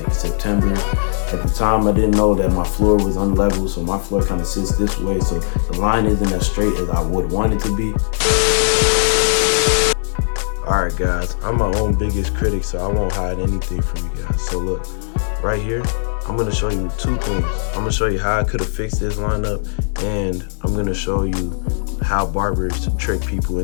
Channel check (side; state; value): right; silent; digital silence